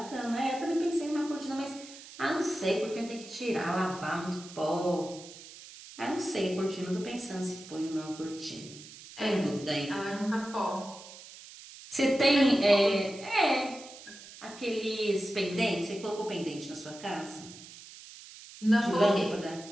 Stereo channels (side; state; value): right; noise; hiss, 17 dB below the sound